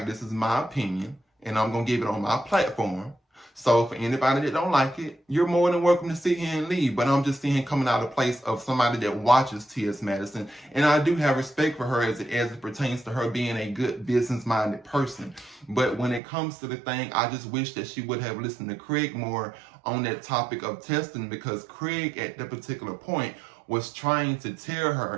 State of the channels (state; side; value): drops out; left; at 16.2 s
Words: this is my opinion and I'm going to give it on my platform. So for anybody that don't like it, you're more than welcome to sit here and leave. But I'm just seeing coming out of place of somebody that watches T.S. Madison. And I do have respect for her as it pertains to her being a good business-minded person. But when it comes to the thing, I just wish that she would have listened to Craig more on that topic of testing, because Craig at that particular point was trying to tell